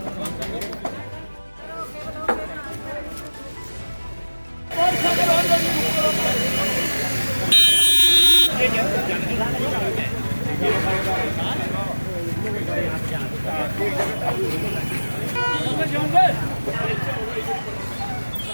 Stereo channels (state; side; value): inverted; both; correlation -1.00